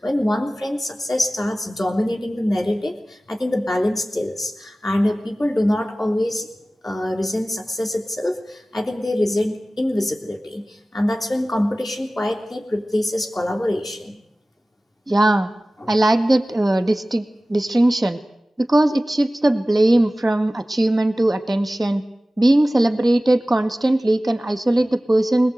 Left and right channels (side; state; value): both; normal; correlation 0.97